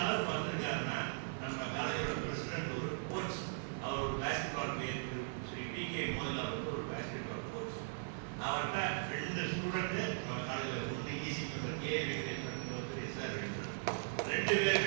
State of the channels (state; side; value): silent; left; digital silence